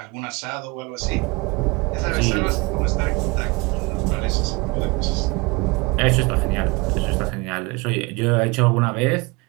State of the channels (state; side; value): quieter; left; 26.2 dB